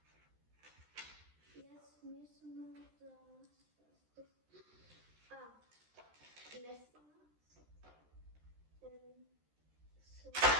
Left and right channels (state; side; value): late; left; 13 ms